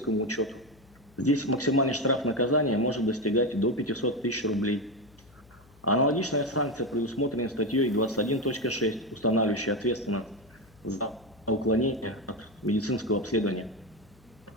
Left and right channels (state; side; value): noise; left; hum, 28 dB below the sound